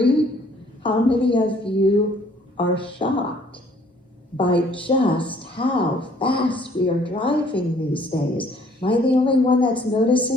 How many of you are shocked by just how fast we are driving these days? Am I the only one that's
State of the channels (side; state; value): both; normal; correlation 0.60